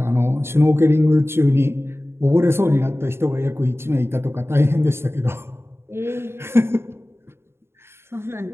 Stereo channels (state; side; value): late; left; 0.12 ms